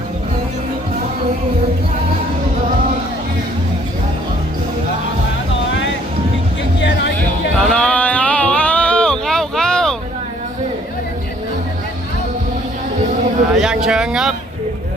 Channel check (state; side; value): normal; both; correlation 0.60